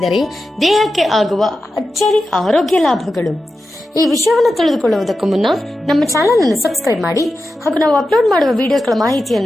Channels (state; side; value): normal; both; correlation 0.91